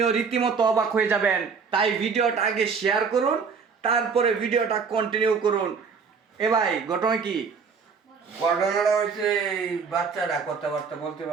রীতিমতো অবাক হয়ে যাবেন। তাই ভিডিওটা আগে শেয়ার করুন, তারপরে ভিডিওটা কন্টিনিউ করুন। এ ভাই, ঘটনা কি? ঘটনাটা হচ্ছে এই বাচ্চাটা কথাবার্তা বলতে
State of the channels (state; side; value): quieter; left; 5.7 dB